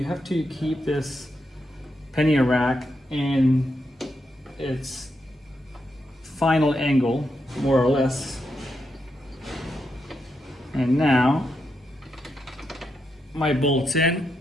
have to keep this Pannier rack in its final angle, more or less. And now my bolt's in.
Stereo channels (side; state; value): both; normal; correlation 0.83